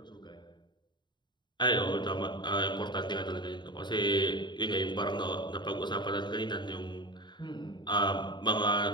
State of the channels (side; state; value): right; late; 0.22 ms